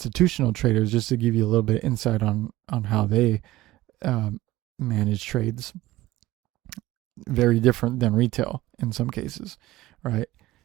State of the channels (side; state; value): left; quieter; 17.0 dB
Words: traders, just to give you a little bit of insight on how they manage trades, very different than retail in some cases, right?